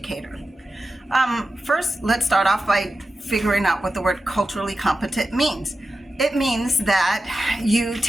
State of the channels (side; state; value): both; normal; correlation 0.92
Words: First, let's start off by figuring out what the word culturally competent means. It means that you